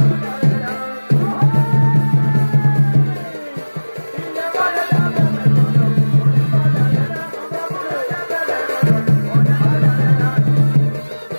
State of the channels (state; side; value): inverted; both; correlation -1.00